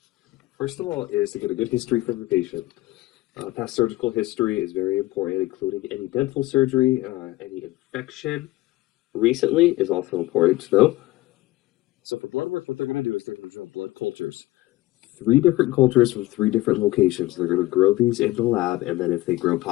First of all, is to get a good history from the patient. Past surgical history is very important, including any dental surgery, any infection recently is also important to know. Three different cultures from three different locations. They're going to grow these in the lab, and then if they grow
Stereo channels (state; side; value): quieter; right; 18.8 dB